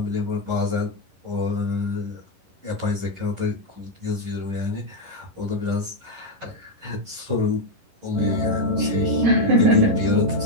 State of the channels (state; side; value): late; left; 11 ms